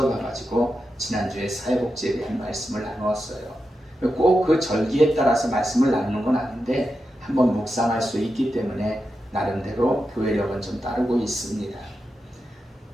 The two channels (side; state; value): both; normal; correlation 0.89